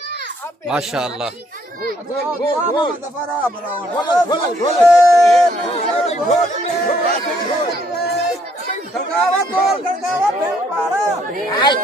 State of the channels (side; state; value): both; normal; correlation 0.67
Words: माशाअल्लाह। खड़कावा तोल खड़कावा फेंक पारा